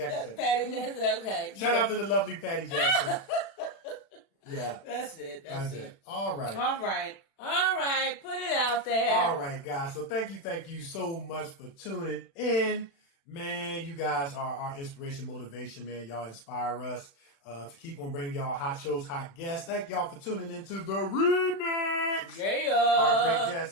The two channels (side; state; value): right; late; 36 ms